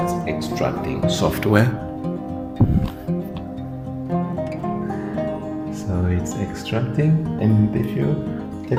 extracting software. So it's extracting, and if you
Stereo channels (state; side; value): identical; both; correlation 1.00